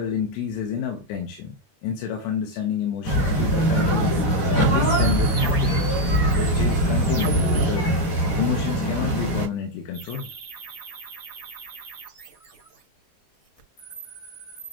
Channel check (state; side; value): late; right; 20 ms